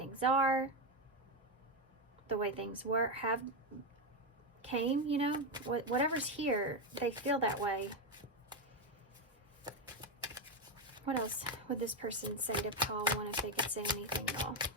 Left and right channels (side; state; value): both; normal; correlation 0.09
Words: are, the way things were, came, you know, whatever's here, they feel that way. What else would this person say to pile 1 if they could say anything at all?